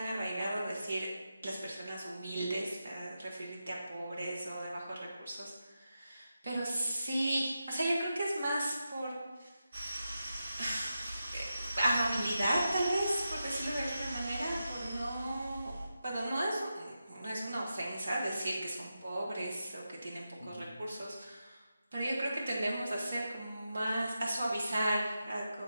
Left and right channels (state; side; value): inverted; both; correlation -0.89